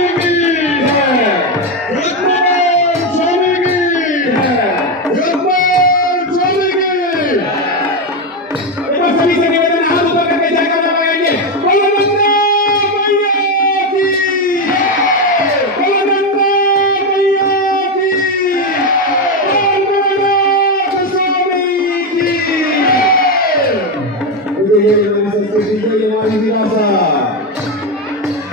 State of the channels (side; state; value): both; normal; correlation 0.09